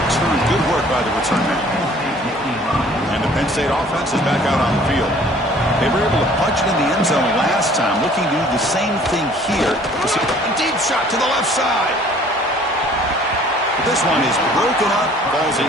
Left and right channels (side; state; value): both; normal; correlation 0.54